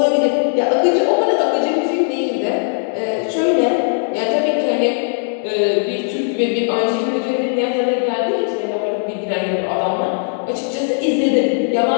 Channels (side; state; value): right; silent; digital silence